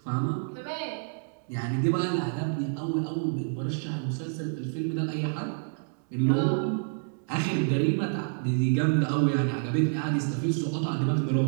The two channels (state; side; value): silent; left; digital silence